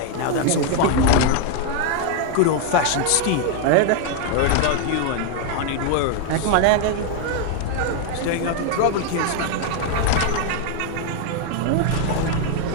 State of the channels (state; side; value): different; both; correlation 0.00